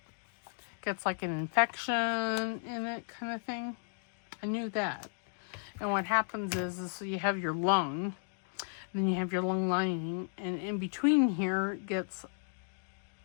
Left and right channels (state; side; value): silent; right; 55 dB below the other